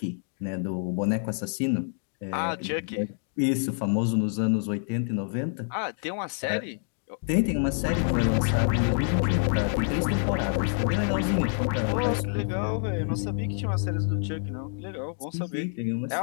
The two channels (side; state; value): right; silent; 60 dB below the other